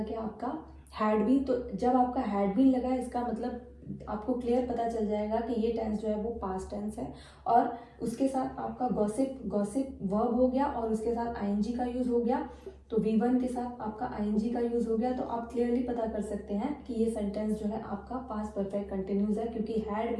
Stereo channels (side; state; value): both; identical; correlation 1.00